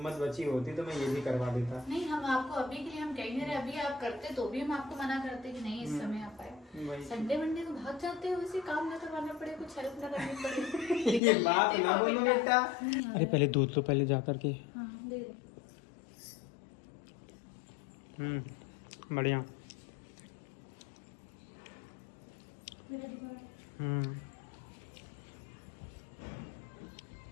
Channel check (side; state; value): right; drops out; at 11.2 s